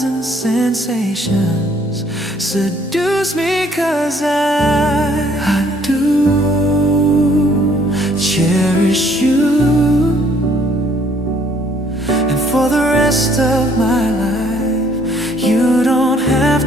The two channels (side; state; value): both; normal; correlation 0.63